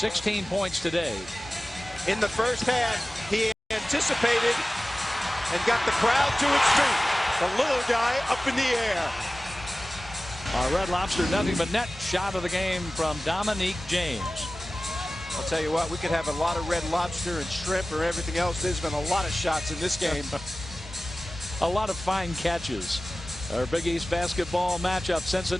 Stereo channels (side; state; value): both; normal; correlation 0.97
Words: points today. In the first half, he anticipated and got the crowd to its feet. The little guy up in the air. Our Red Lobster nothing but net shot of the game from Dominique James. I'll tell you what, we could have a lot of Red Lobster and shrimp or everything else. There's been a lot of shots in this game. A lot of fine catches. Our Big East basketball matchup,